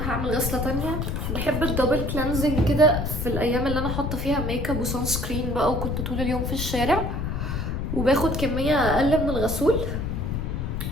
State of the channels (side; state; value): left; noise; rumble, 2 dB below the sound